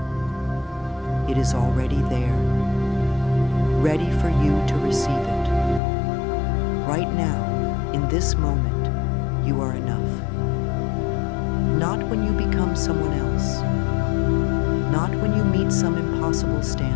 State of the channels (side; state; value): right; drops out; at 5.8 s